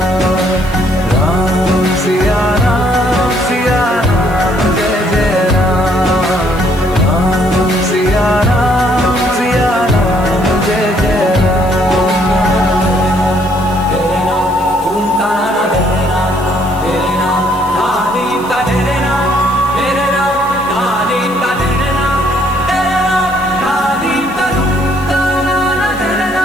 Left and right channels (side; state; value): left; noise; hiss, 21 dB below the sound